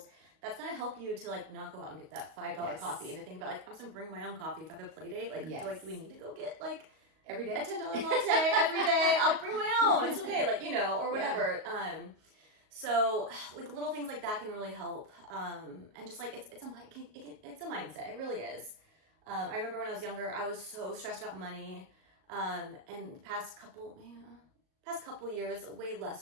That's gonna help you to like not go out and get that $5 coffee and to think about like, I'm just gonna bring my own coffee if I have a play date. Like, do we need to go get like every day a $10 latte every day? I'll bring my own. It's okay, like or whatever. Yeah. So like little things like that can really help. And just like it's a mindset. It really is. I remember when I was younger, I was so stressed about money. And the past couple years, way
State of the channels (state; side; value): late; left; 38 ms